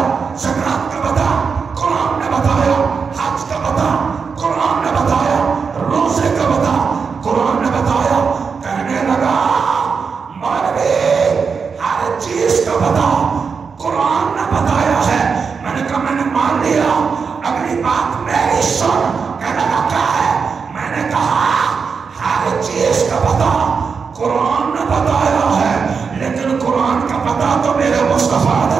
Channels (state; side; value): quieter; left; 5.6 dB